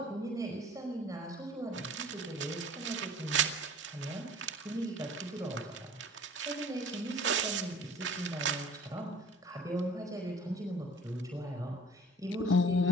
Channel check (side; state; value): both; normal; correlation 0.48